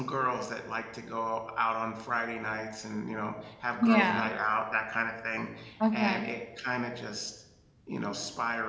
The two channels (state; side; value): identical; both; correlation 1.00